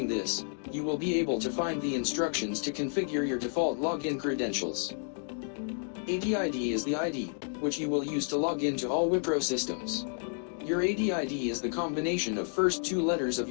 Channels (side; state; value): right; silent; 57 dB below the other